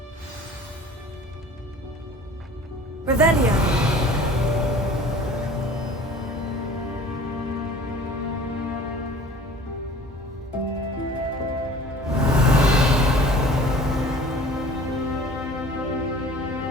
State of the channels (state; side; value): normal; both; correlation 0.46